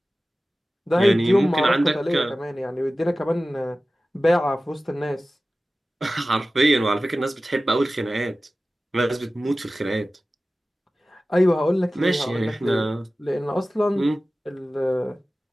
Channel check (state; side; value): normal; both; correlation 0.96